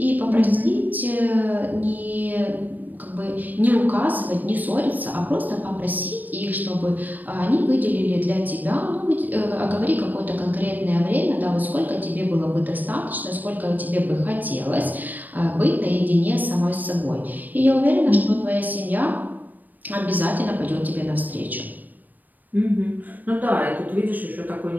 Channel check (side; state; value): left; late; 0.086 ms